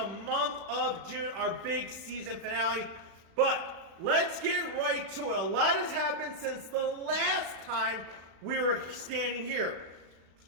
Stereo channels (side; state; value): left; late; 36 ms